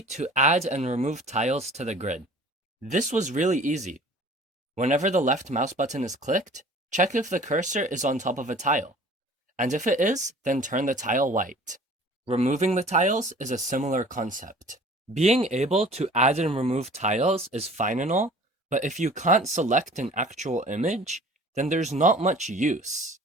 to add and remove tiles to the grid. This was really easy. Whenever the left mouse button is clicked, check if the cursor is on top of a tile, and if it is, then turn the tile white. Removing the tiles is a similar concept. Being able to add and remove tiles is fine and all, but if you can't select an actual image, then there's not much use.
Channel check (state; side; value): normal; both; correlation 0.47